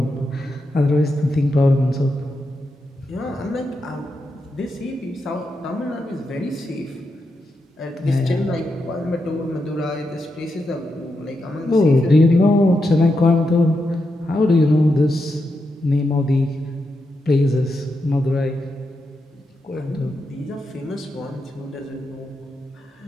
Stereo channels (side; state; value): both; normal; correlation 0.85